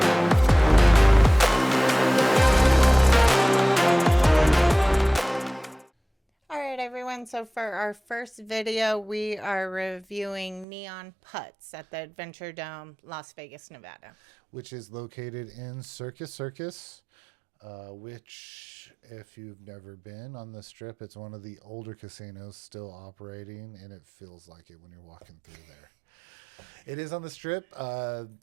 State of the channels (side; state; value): left; drops out; at 10.7 s